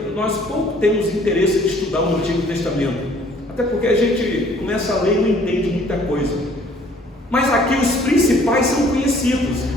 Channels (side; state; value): both; normal; correlation 0.58